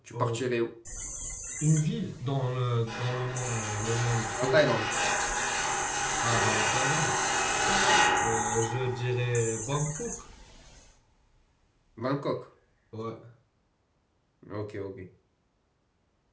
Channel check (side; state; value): both; identical; correlation 1.00